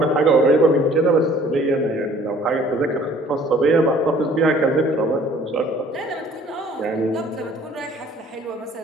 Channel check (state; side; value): normal; both; correlation 0.55